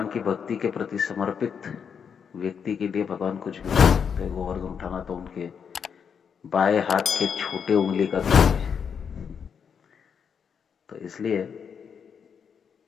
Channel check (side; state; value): right; quieter; 7.0 dB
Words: की भक्ति के प्रति समर्पित व्यक्ति के लिए भगवान कुछ भी कर सकते हैं। गोवर्धन उठाना तो उनके बाएं हाथ के छोटे उंगली का काम है। तो इसलिए